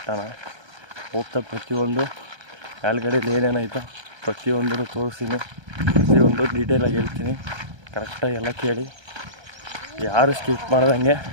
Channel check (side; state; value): left; late; 1.3 ms